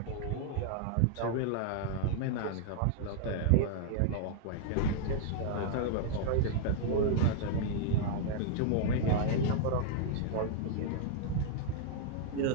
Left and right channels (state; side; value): different; both; correlation -0.01